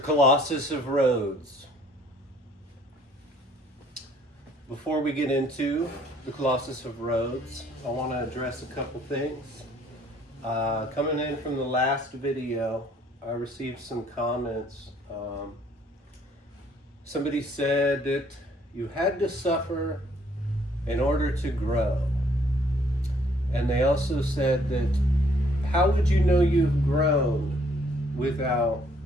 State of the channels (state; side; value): normal; both; correlation 0.63